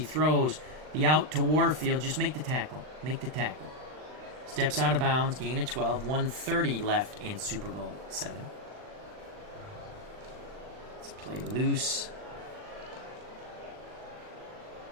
throws the out to Warfield. Just make the tackle. Make the tackle. Steps out of bounds. Gain of 12. 1:30 left in Super Bowl VII. Let's play loose.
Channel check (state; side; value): late; left; 39 ms